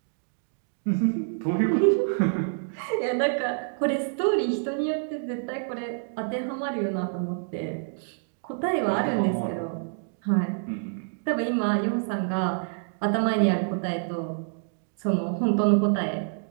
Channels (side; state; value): left; silent; digital silence